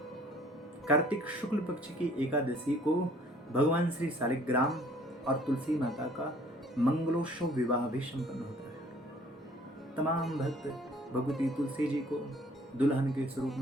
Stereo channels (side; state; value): both; normal; correlation 0.56